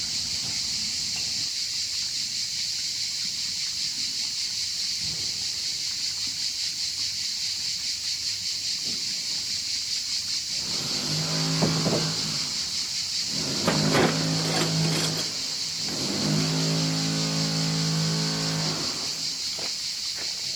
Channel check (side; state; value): right; noise; hiss, 22 dB below the sound